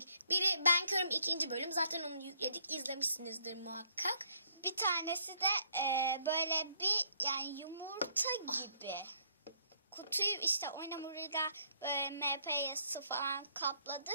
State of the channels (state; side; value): inverted; both; correlation -0.66